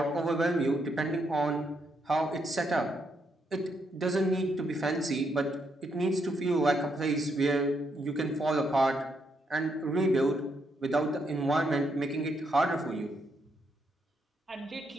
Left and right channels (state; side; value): normal; both; correlation 0.77